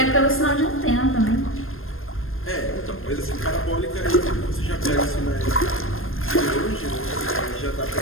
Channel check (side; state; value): right; late; 0.60 ms